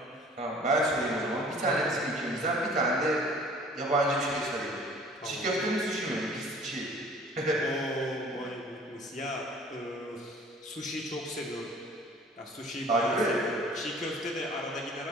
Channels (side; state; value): both; normal; correlation 0.50